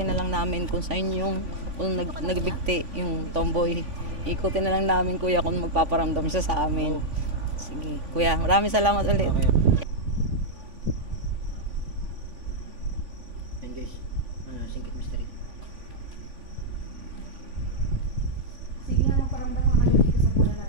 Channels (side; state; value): left; late; 3.5 ms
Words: na lang namin kung saan yung kung nagbigti yung tomboy. Ikutin na lang namin kuya kung magpaparamdam siya sa amin. Oo. Sige. Kuya, maraming salamat ulit. Okay. Yan guys. Singkit mystery. Sige nga, magparamdam ka kayo dito sa bulan na